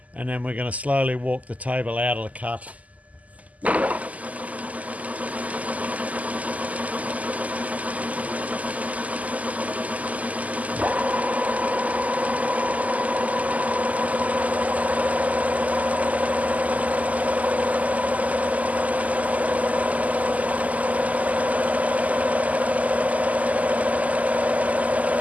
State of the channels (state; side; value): late; left; 0.074 ms